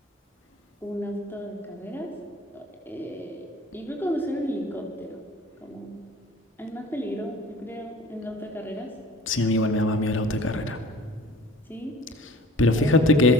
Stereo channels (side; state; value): both; normal; correlation 0.46